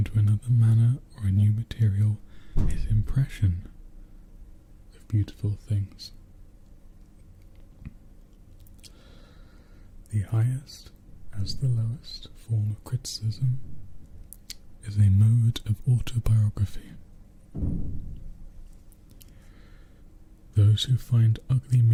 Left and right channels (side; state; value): both; identical; correlation 1.00